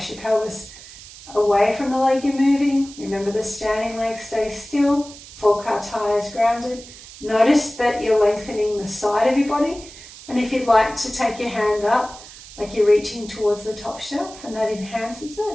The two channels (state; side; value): noise; right; hiss, 17 dB below the sound